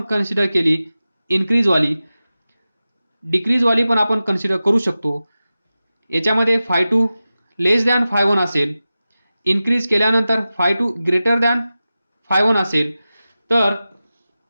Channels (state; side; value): inverted; both; correlation -0.95